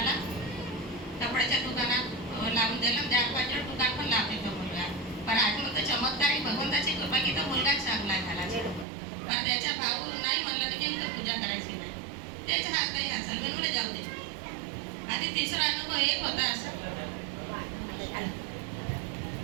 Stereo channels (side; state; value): left; drops out; at 8.8 s